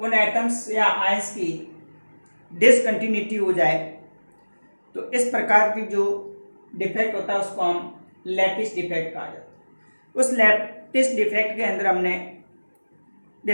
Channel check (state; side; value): inverted; both; correlation -1.00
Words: एटम्स या आयंस की डिसकंटिन्यूटी हो जाए तो इस प्रकार की जो डिफेक्ट होता है उसको हम लैटिस डिफेक्ट कहा जाता है। उस लैटिस डिफेक्ट के अंदर हमने